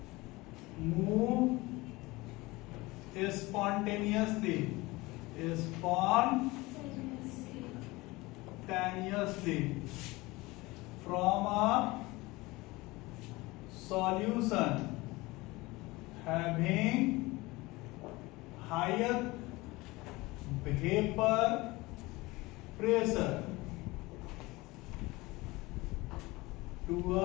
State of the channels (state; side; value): quieter; right; 21.7 dB